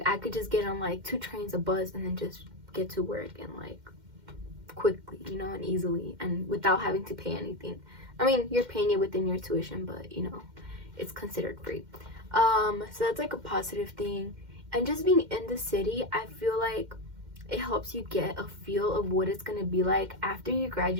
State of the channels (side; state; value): left; late; 2.1 ms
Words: I could just get on like 2 trains, a bus, and then just get to work and like quickly, you know, and easily, and without having to pay anything. I mean, you're paying it within your tuition, but you know, it's considered free. So that's like a positive thing. And just being in the city, I feel like it helps you get a feel of what it's gonna be like after you